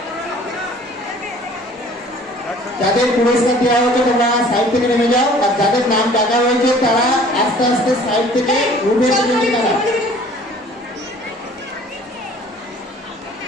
যাদের পুরস্কার দেওয়া হয়েছে তোমরা সাইড থেকে নেমে যাও, আর যাদের নাম ডাকা হয়েছে তারা আস্তে আস্তে সাইড থেকে রুমে চলে যাও।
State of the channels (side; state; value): both; normal; correlation 0.51